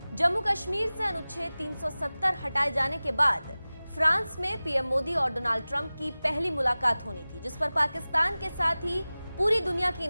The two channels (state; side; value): inverted; both; correlation -0.98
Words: जम्मू कश्मीर से अनुच्छेद 370 हटाए जाने के बाद फ्रांस में पीएम मोदी और डोनाल्ड ट्रंप की पहली मुलाकात होनी थी, जिस पर पाकिस्तान के साथ ही पूरी दुनिया की